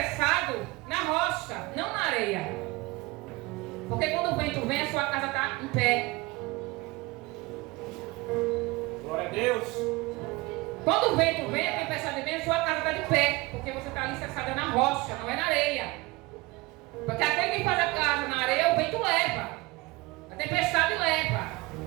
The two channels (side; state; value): left; quieter; 22.8 dB